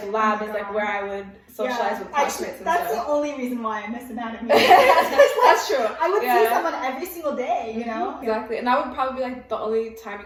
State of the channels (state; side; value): identical; both; correlation 1.00